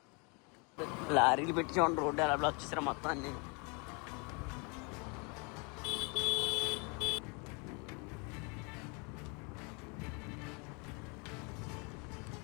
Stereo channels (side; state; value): right; quieter; 32.6 dB